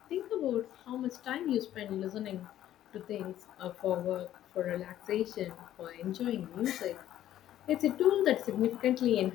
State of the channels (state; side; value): quieter; right; 12.3 dB